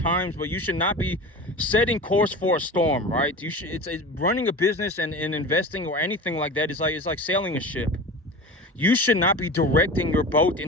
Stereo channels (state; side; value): normal; both; correlation 0.33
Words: but you should not be setting course for a storm, right? It's running a business and investing or anything like that is like sailing a ship. You should not be directing your boat